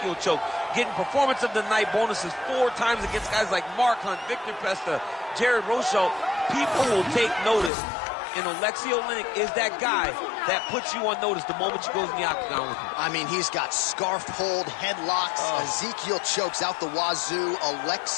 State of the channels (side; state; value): right; drops out; at 7.7 s